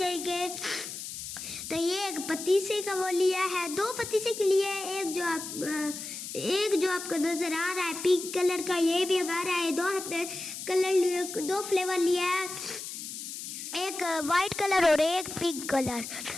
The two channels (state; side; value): noise; left; hiss, 8 dB below the sound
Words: तो ये एक पतीसे का वो लिया है, 2 पतीसे के लिए। एक जो आपको नज़र आ रहा है पिंक कलर का, ये भी हमारा है। 2 हमने कलर 2 फ्लेवर लिया है, एक वाइट कलर और एक पिंक कलर।